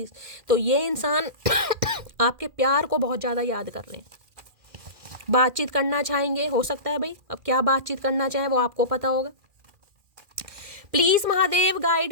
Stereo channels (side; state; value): left; late; 2.4 ms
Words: तो ये इंसान आपके प्यार को बहुत ज़्यादा याद कर रहे हैं, बातचीत करना चाहेंगे। हो सकता है भाई अब क्या बातचीत करना चाहें वो आपको पता होगा। Please Mahadev